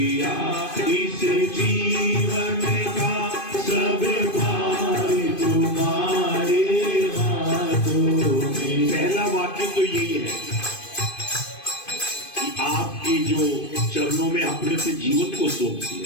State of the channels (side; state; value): right; late; 2.5 ms